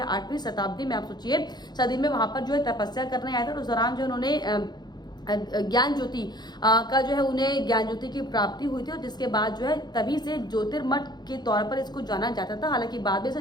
8वीं शताब्दी में, आप सोचिए, सदी में वहां पर जो है तपस्या करने आए थे। तो उस दौरान जो उन्होंने ज्ञान ज्योति का जो है उन्हें ज्ञान ज्योति की प्राप्ति हुई थी और जिसके बाद जो है तभी से ज्योतिर्मठ के तौर पर इसको जाना जाता था। हालांकि बाद में इसे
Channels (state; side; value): late; right; 0.20 ms